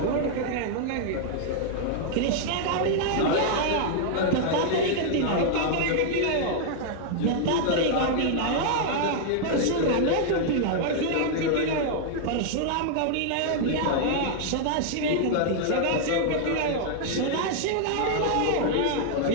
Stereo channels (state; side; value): different; both; correlation -0.01